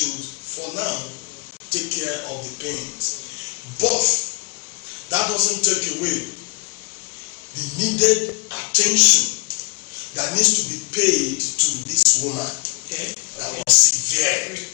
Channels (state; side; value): quieter; right; 31.3 dB